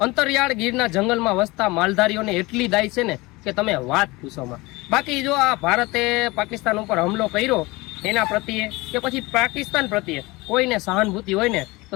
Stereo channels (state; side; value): quieter; right; 22.6 dB